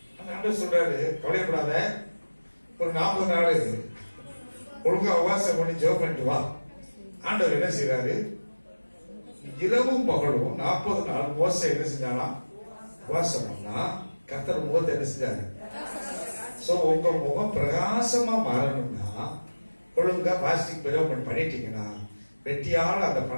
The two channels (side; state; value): both; inverted; correlation -1.00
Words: அந்த ஆண்டவர் சொல்றாரு, கவலைப்படாத, ஒரு 40 நாள் ஒழுங்கா உபவாசம் பண்ணி ஜெபம் பண்ணிட்டு வா. ஆண்டவர் என்ன செய்யறாரு, இரவும் பகலும் 40 நாள் மோசே என்ன செஞ்சானா உபவாசம் பண்ணா, கர்த்தர் முகத்தை என்ன செஞ்சாரு. சோ உங்க முகம் பிரகாசமா மாறணும்னா ஒழுங்கா பாஸ்டிக் பிரயோகம் பண்ணிட்டீங்கன்னா வெட்டியால அந்த